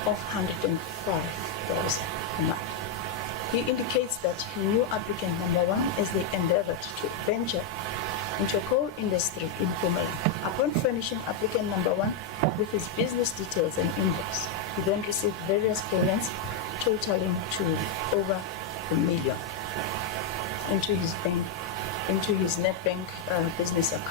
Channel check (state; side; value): quieter; right; 4.3 dB